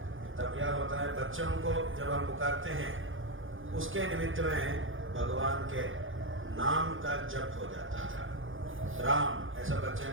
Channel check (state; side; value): late; left; 0.58 ms